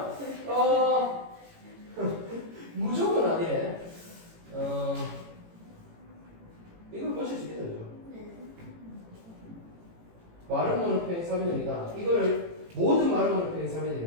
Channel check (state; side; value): late; left; 18 ms